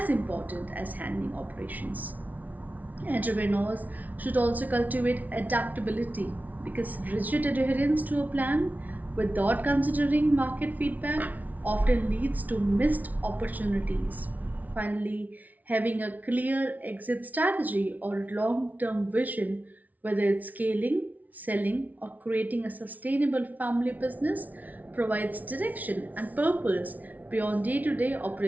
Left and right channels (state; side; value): late; left; 0.075 ms